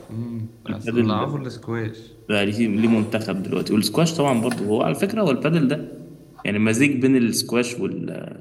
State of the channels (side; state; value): both; identical; correlation 1.00